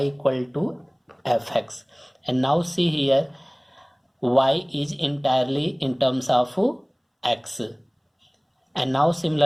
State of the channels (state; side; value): identical; both; correlation 1.00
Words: equal to fx. And now see here, y is entirely in terms of x. And now